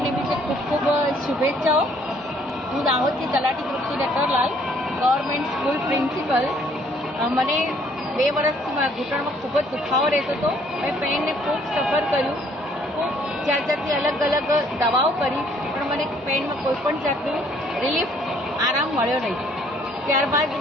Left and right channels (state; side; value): normal; both; correlation 0.62